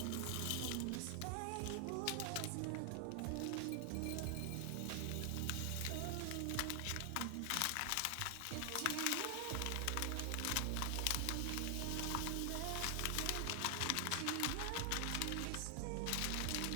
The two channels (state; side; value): different; both; correlation 0.00